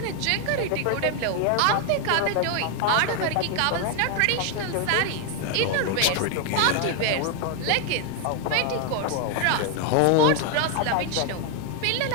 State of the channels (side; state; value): both; different; correlation 0.00